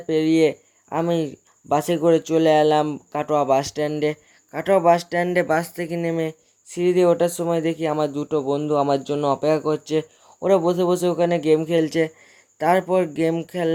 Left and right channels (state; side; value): identical; both; correlation 1.00